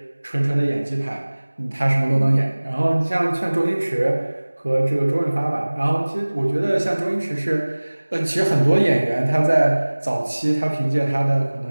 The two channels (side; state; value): both; inverted; correlation -1.00